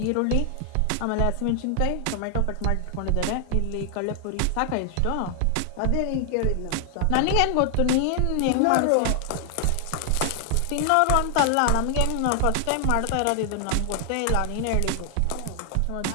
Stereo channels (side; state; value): both; different; correlation 0.00